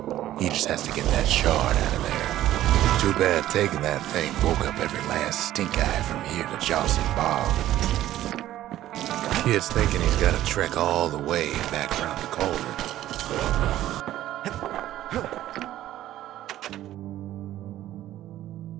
he just has to get that shard out of there. Too bad taking that thing woke up every last stink eye from here to Johnson Bog. Kid's thinking he's got to trek all the way back around the cauldron.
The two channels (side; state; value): left; quieter; 13.6 dB